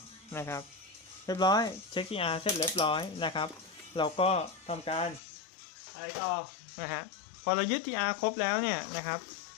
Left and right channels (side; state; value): right; drops out; at 5.2 s